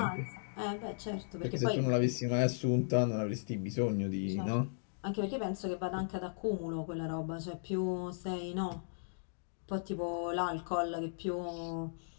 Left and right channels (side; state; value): right; silent; digital silence